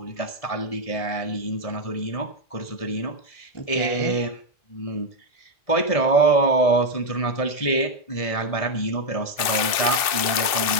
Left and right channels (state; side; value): late; right; 2.6 ms